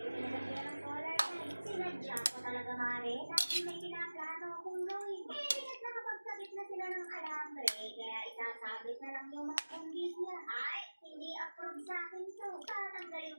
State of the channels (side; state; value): both; inverted; correlation -1.00